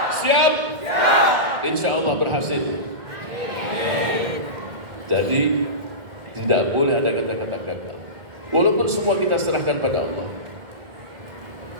Siap? Insya Allah berhasil. Jadi tidak boleh ada kata-kata gagal, walaupun semua kita serahkan pada Allah.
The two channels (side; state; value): left; late; 1.7 ms